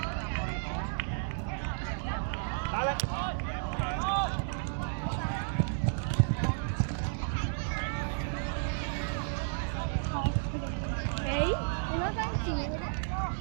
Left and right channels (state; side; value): silent; left; 56 dB below the other